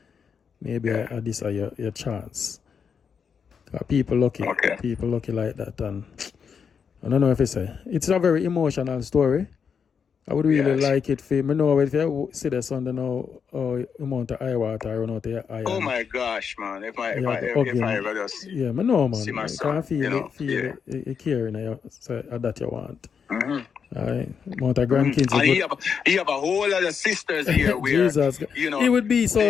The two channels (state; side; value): quieter; right; 6.6 dB